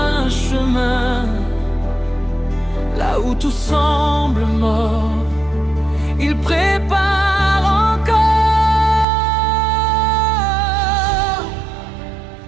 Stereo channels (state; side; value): drops out; left; at 9.1 s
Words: chemin. Là où tout semble mort, il prépare encore.